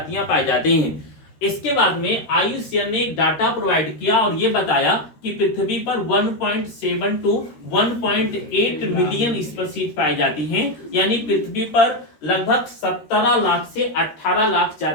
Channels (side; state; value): right; late; 13 ms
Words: पाई जाती हैं। इसके बाद में IUCN ने एक डाटा प्रोवाइड किया और ये बताया कि पृथ्वी पर 1.7 to 1.8 मिलियन स्पीशीज पाई जाती हैं। यानी पृथ्वी पर लगभग 17 लाख से 18 लाख